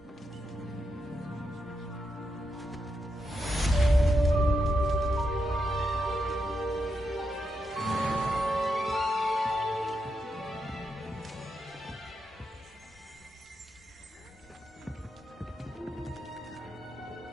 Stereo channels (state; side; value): normal; both; correlation 0.84